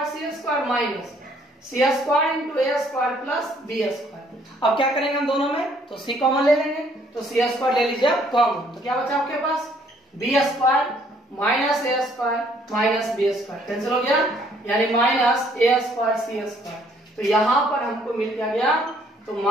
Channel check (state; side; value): normal; both; correlation 0.64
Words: c square minus c square into a square plus b square. अब क्या करेंगे हम दोनों में, तो c कॉमन ले लेंगे, तो c स्क्वायर ले लीजिए कॉमन। तो क्या बचा आपके पास b square minus a square minus b square cancel हो गया, यानी minus a square c square. तो यहाँ पर हमको मिल क्या गया, तो